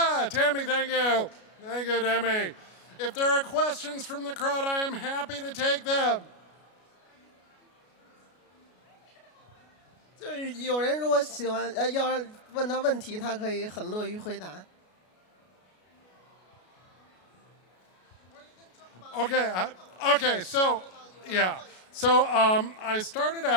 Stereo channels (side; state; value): right; late; 33 ms